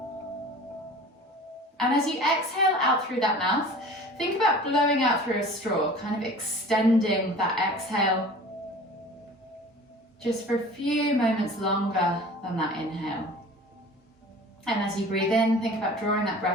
And as you exhale out through that mouth, think about blowing out through a straw, kind of extending that exhale just for a few moments longer than that inhale. And as you breathe in, think about drawing that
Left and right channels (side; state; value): both; normal; correlation 0.42